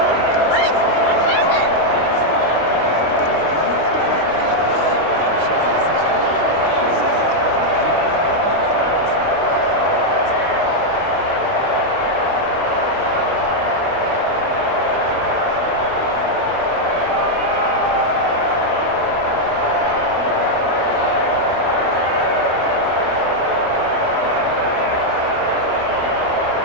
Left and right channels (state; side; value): late; right; 25 ms